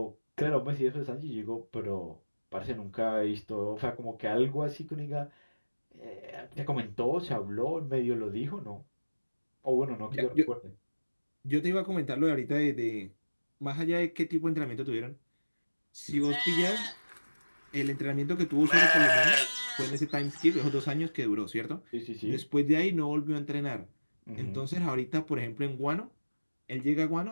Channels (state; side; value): inverted; both; correlation -1.00